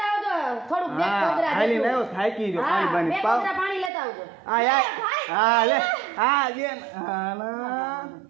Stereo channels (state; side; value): drops out; left; at 3.9 s